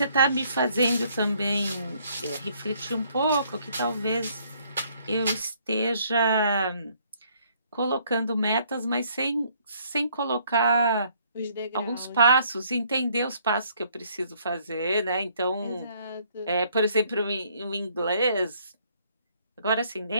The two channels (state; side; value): inverted; both; correlation -0.65